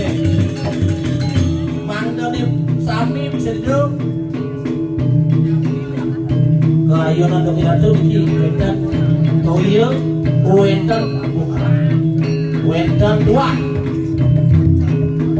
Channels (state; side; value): identical; both; correlation 1.00